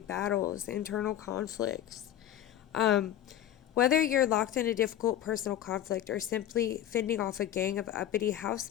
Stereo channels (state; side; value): quieter; right; 11.6 dB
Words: internal conflicts. Um, Whether you're locked in a difficult personal conflict or simply fending off a gang of uppity house